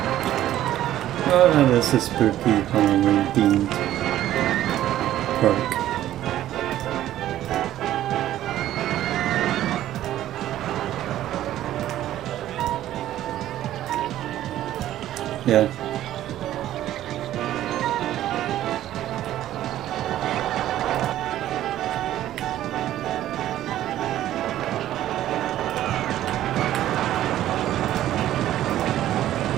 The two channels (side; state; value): left; quieter; 13.0 dB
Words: Oh, this is spooky Halloween themed park. Yeah.